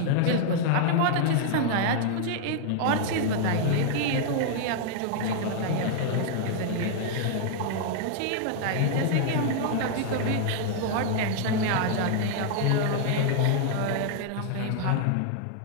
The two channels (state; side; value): different; both; correlation -0.01